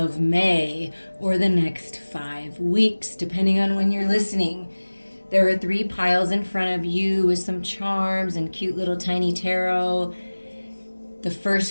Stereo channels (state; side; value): inverted; both; correlation -1.00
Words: May or the next 5 weeks, depending on when you're listening. There are 3 piles in front of you with some charms and cute little tiny tarot. The